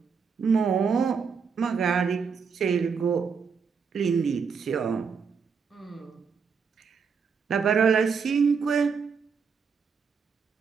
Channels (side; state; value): left; quieter; 5.9 dB